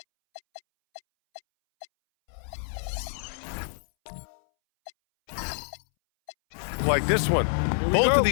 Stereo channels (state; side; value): silent; right; 60 dB below the other